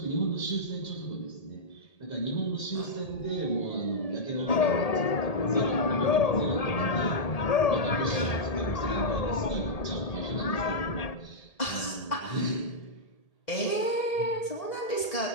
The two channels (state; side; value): late; right; 1.8 ms